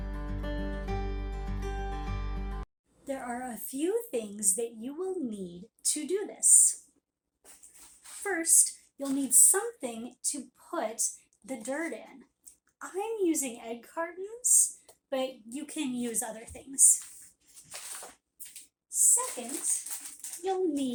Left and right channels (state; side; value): identical; both; correlation 1.00